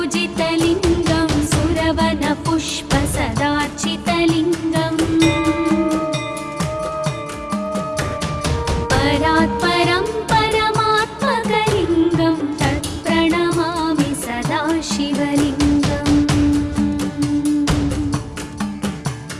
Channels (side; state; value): both; identical; correlation 1.00